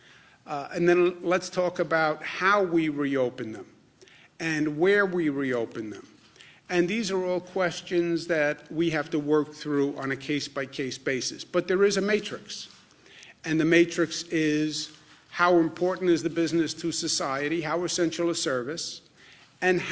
And then let's talk about how we reopen them and where we reopen them. And these are all questions that we have to work through on a case-by-case basis. But there is a matrix. And the matrix is how important is the business to society, how essential a service, and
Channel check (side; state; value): both; identical; correlation 1.00